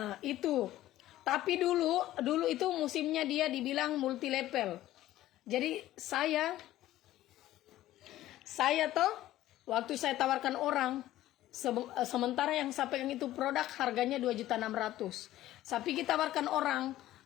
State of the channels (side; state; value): right; quieter; 14.6 dB